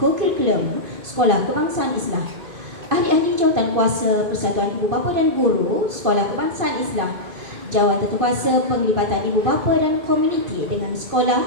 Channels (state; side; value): late; left; 2.5 ms